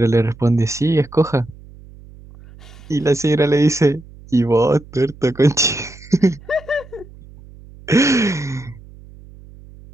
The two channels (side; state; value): right; noise; hum, 21 dB below the sound